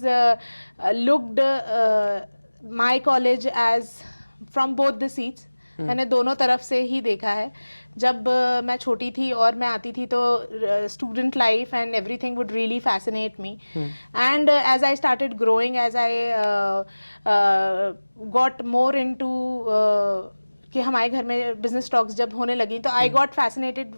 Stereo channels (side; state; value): both; inverted; correlation -1.00